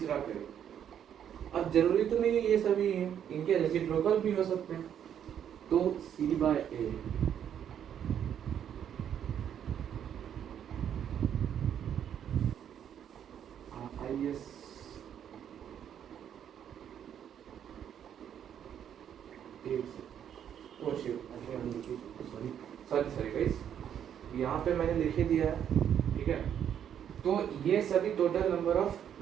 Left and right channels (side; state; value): left; quieter; 9.2 dB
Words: पेयर। अब जरूरी तो नहीं है ये सभी हैं, इनके रेसिप्रोकल भी हो सकते हैं, तो C by A is sorry guys, यहाँ पे मैंने लिखे दिया है। ठीक है, तो ये सभी टोटल नंबर ऑफ